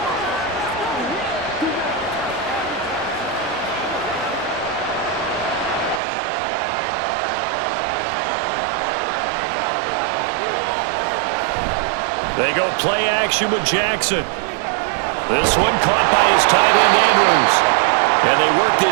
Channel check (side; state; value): left; drops out; at 6.0 s